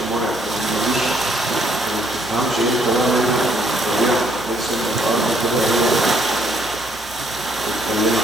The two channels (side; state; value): both; normal; correlation 0.68